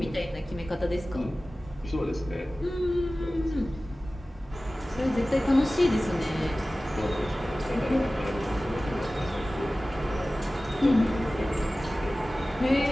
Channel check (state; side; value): normal; both; correlation 0.97